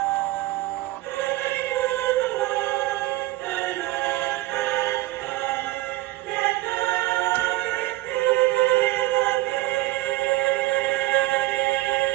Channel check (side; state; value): left; quieter; 17.7 dB